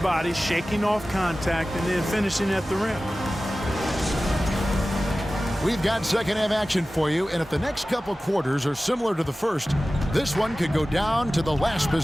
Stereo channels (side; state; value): both; normal; correlation 0.96